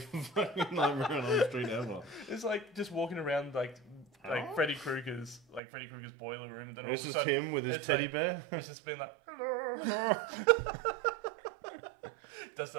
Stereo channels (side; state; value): left; drops out; at 5.6 s